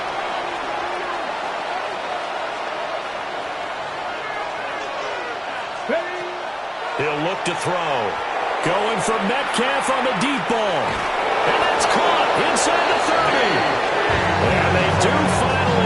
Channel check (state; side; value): identical; both; correlation 1.00